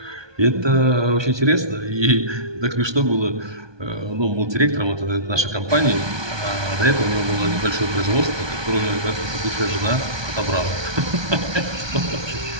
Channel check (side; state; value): left; late; 1.2 ms